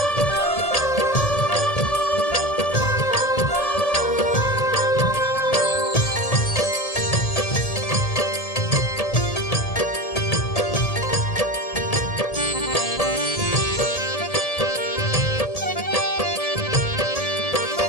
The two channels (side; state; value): right; late; 1.8 ms